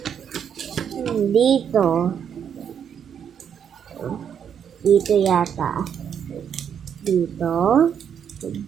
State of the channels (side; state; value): left; quieter; 8.2 dB